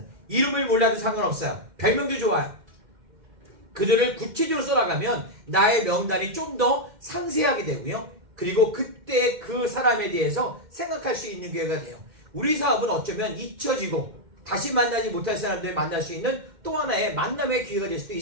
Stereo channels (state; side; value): late; left; 2.1 ms